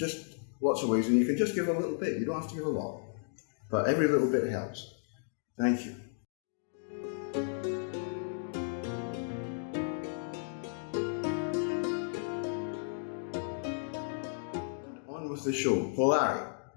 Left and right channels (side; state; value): right; silent; digital silence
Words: lots of ways, and you can just give a little bit. You don't have to give a lot, but every little bit helps. Thank you. With the show, Polari.